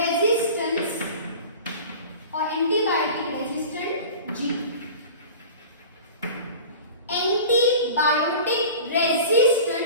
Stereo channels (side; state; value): both; inverted; correlation -0.38